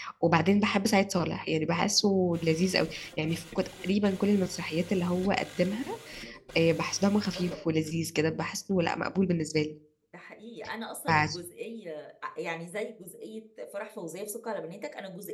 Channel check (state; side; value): identical; both; correlation 1.00